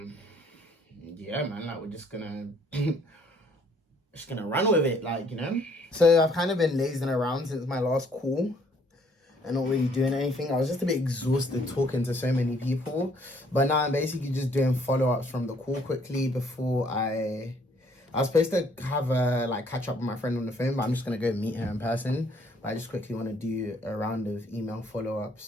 yeah, man, like we're just going to run with it, like, you know. So I've kind of been lazing around since my last call and not really doing anything. I was just a bit exhausted talking to so many people. But now I'm basically just doing follow-ups from the call quickly before I was supposed to have a like catch up with my friend on the phone, but I'm just gonna go meet her in person. But I just quickly want to do a round of email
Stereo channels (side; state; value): both; normal; correlation 0.64